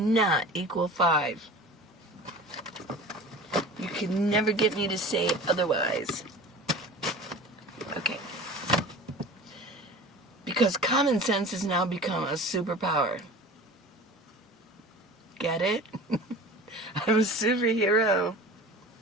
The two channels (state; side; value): normal; both; correlation 0.38